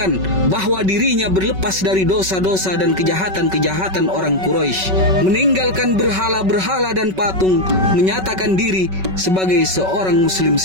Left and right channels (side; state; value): left; late; 5.3 ms